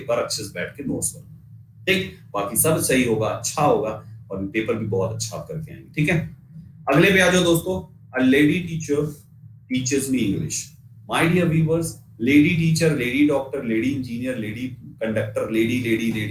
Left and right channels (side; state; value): both; identical; correlation 1.00